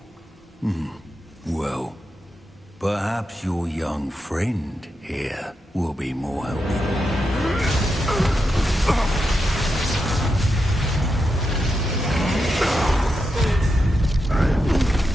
Well, perhaps your young friend here will be more helpful.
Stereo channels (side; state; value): both; normal; correlation 0.86